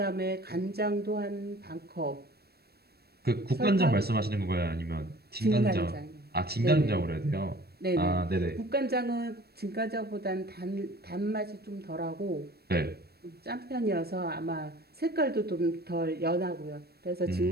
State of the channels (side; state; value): left; late; 0.46 ms